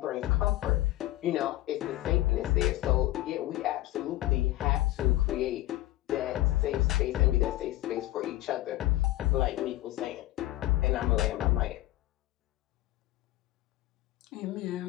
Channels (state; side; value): quieter; right; 16.3 dB